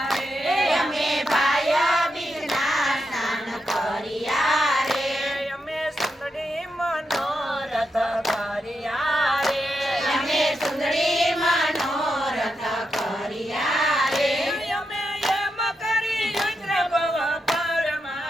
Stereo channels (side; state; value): both; normal; correlation 0.85